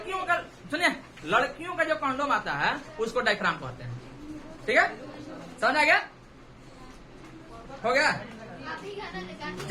का, सुनिए लड़कियों का जो कंडोम आता है उसको डायफ्राम कहते हैं, ठीक है। समझ आ गया? हो गया?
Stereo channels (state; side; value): identical; both; correlation 1.00